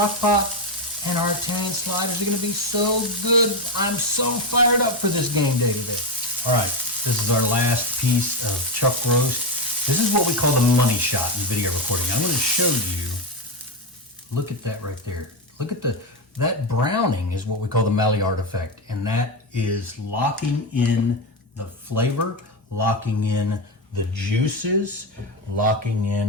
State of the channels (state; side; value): normal; both; correlation 0.11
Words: pot, and our Italian sliders are going to be so good. I'm so fired up for this game day today. All right, this is our last piece of chuck roast. This is what we call the money shot in video recording. I'm going to show you, look at that right there. Look at that browning is what we call the Maillard effect, and that is locking in the flavor, locking in the juices, locking